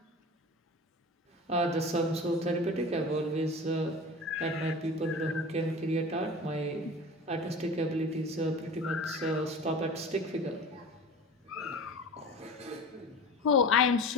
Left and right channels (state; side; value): normal; both; correlation 0.35